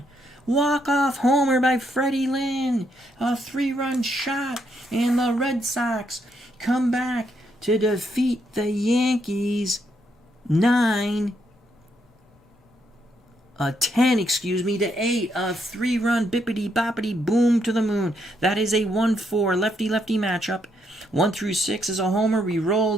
Walk-off homer by Freddie Lynn. A 3-run shot. And the Red Sox come back to defeat the Yankees 10 to 8. A 3-run bippity-boppity boom to the moon. That is a 1-4 lefty-lefty matchup. 1 through 6 is a homer. We roll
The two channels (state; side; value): normal; both; correlation 0.76